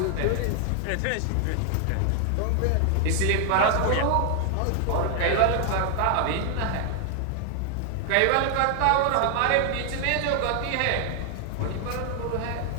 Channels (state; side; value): different; both; correlation 0.00